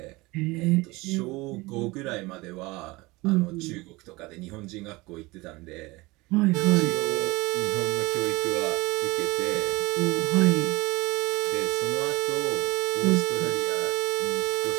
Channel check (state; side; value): quieter; left; 22.4 dB